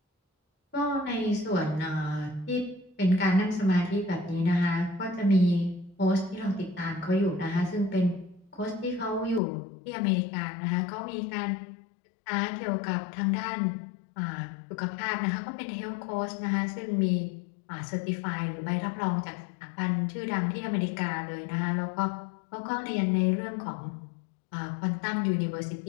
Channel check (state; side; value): drops out; right; at 9.4 s